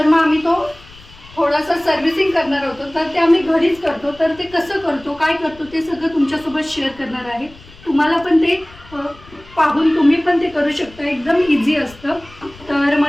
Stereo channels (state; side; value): noise; left; rumble, 23 dB below the sound